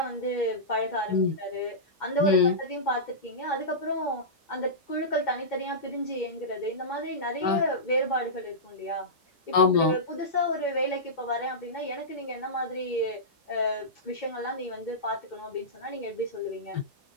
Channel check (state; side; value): normal; both; correlation -0.16